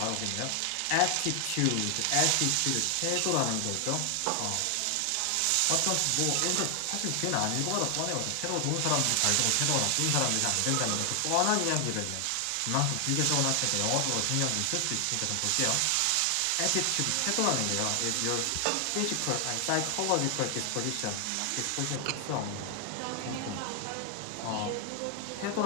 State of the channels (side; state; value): both; different; correlation 0.00